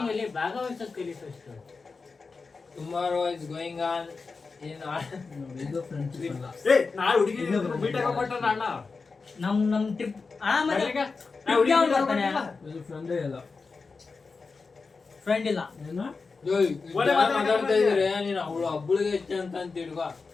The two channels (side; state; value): right; quieter; 4.4 dB